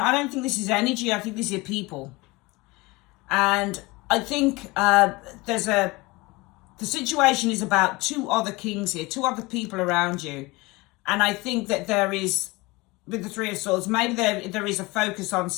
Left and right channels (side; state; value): right; quieter; 23.1 dB